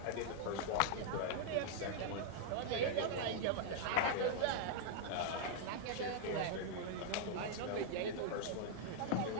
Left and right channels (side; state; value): both; different; correlation -0.01